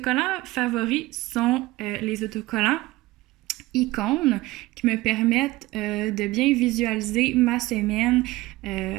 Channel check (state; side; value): quieter; left; 19.1 dB